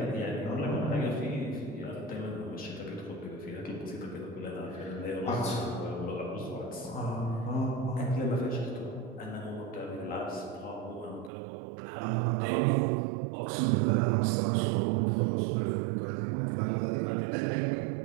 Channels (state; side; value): drops out; left; at 11.3 s